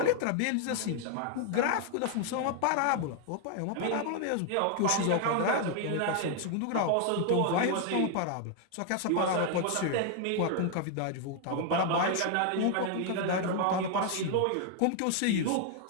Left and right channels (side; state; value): both; different; correlation 0.00